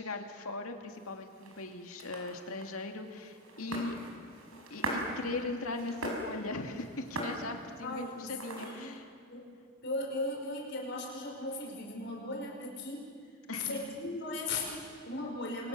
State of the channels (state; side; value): normal; both; correlation 0.07